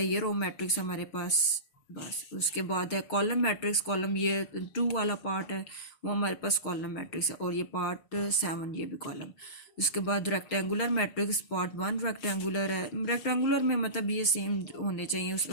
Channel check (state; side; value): late; right; 6.4 ms